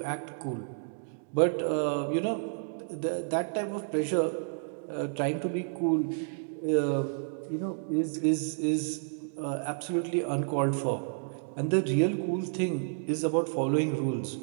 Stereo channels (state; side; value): silent; left; digital silence